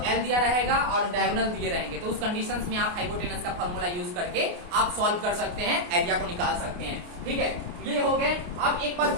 एल दिया रहेगा और डायगोनल दिए रहेंगे। तो उस कंडीशंस में आप हाइपोटेनस का फॉर्मूला यूज करके आप सॉल्व कर सकते हैं, एरिया को निकाल सकते हैं, ठीक है। ये हो गए। अब एक बात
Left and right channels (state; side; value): late; left; 28 ms